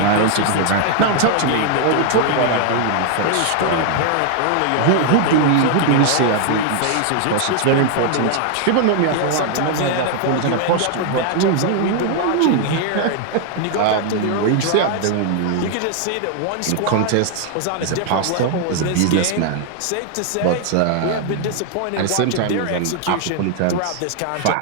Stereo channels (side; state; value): both; different; correlation 0.00